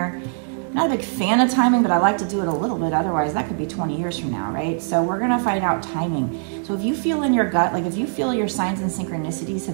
Not a big fan of timing, but I like to do it a little bit. Otherwise, that could be 20 years from now, right? So we're gonna find out timing. So if you feel in your gut, like if you feel your signs and synchronicities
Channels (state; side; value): silent; left; 59 dB below the other